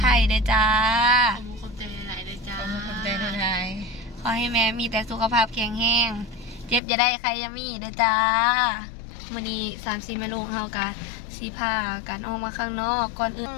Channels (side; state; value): right; drops out; at 6.8 s